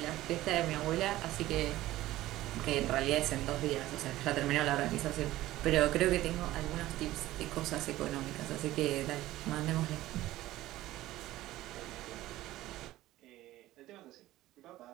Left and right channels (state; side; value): quieter; left; 15.9 dB